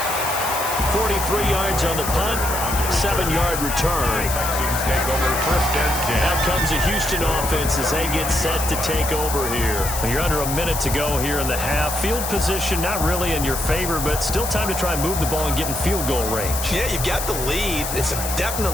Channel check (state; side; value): noise; left; hiss, 5 dB below the sound